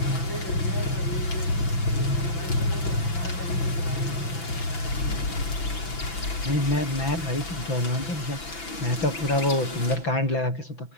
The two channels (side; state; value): right; late; 6.0 ms